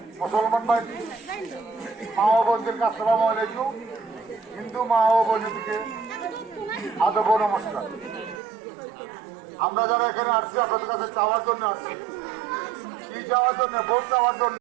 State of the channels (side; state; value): left; drops out; at 8.4 s